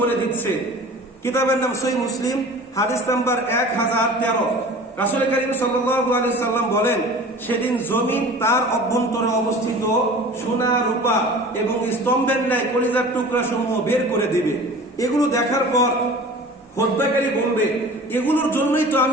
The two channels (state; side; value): normal; both; correlation 0.41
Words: বলে দিচ্ছে। কিতাবের নাম সহিহ মুসলিম, হাদিস নাম্বার 1013। রাসূল করিম সাল্লাল্লাহু আলাইহি সাল্লাম বলেন, সেদিন জমিন তার অভ্যন্তরে অবস্থিত সোনা, রূপা এবং স্তম্ভের ন্যায় কলিজার টুকরা সমূহ বের করে দিবে। এগুলো দেখার পর হত্যাকারী বলবে, এগুলোর জন্যই তো